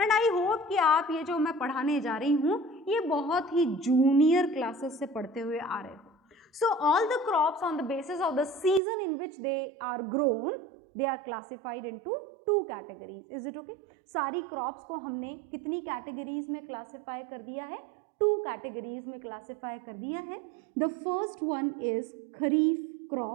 एंड आई होप कि आप ये जो मैं पढ़ाने जा रही हूँ ये बहुत ही जूनियर क्लासेस से पढ़ते हुए आ रहे हो। So all the crops on the basis of the season in which they are grown, they are classified into 2 categories. Is it okay? सारी क्रॉप्स को हमने कितनी कैटेगरीज में क्लासिफाई कर दिया है? 2 कैटेगरीज में क्लासिफाई कर दिया है। The first one is kharif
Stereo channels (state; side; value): drops out; left; at 8.8 s